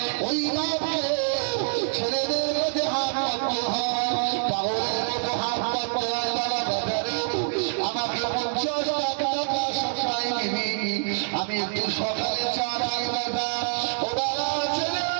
ওই বাপকে ছেলেদের মধ্যে হাত পাততে হয়, পাগলের মতো হাত পাততে হয়। বাবা বাবারে, আমাকে 50 টাকা সবসময় দিবি, আমি একটু সকালে চা খাই বাবা। ও বাবা ছেলে,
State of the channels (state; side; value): silent; left; 61 dB below the other